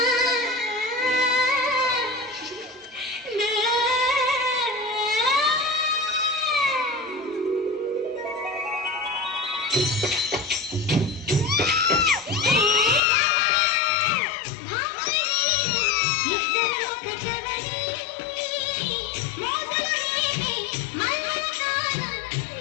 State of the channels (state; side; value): drops out; right; at 13.0 s